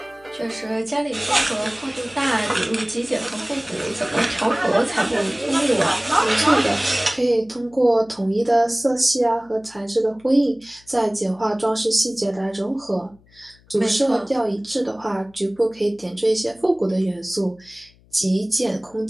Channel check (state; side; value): noise; left; hum, 29 dB below the sound